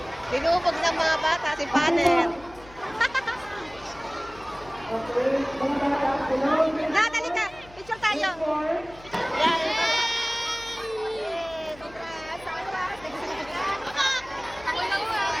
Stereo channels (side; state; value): left; noise; hum, 21 dB below the sound